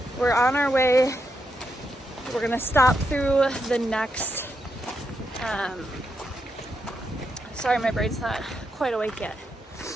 We're on our way. We're gonna stop through the next, sorry, my brain's not quite awake yet.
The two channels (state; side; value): normal; both; correlation 0.83